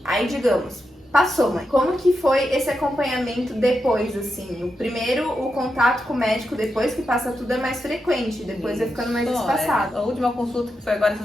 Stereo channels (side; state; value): both; normal; correlation 0.87